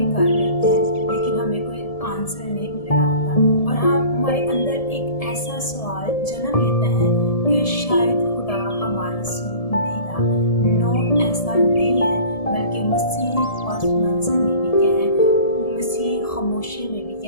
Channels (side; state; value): right; late; 1.7 ms